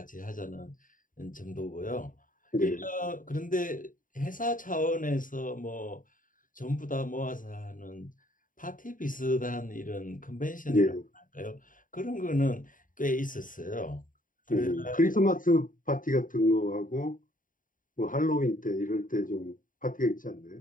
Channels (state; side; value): late; right; 0.39 ms